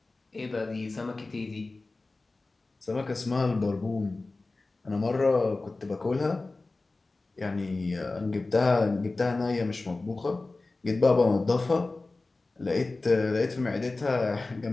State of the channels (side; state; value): right; quieter; 3.3 dB